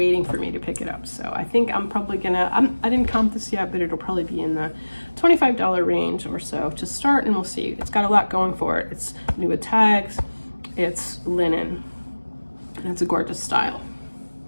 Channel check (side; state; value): both; inverted; correlation -1.00